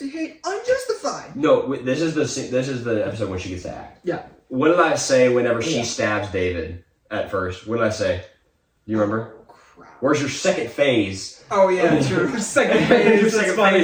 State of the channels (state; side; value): identical; both; correlation 1.00